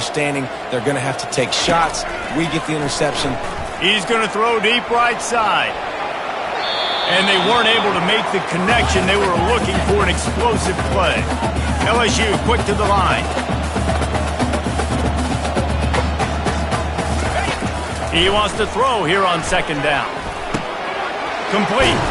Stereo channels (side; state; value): both; identical; correlation 1.00